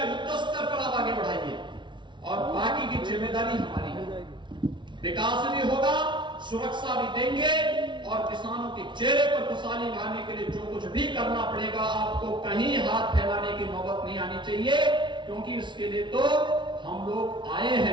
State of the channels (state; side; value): late; left; 0.23 ms